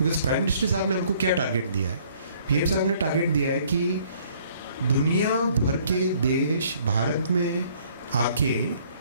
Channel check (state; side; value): inverted; both; correlation -0.60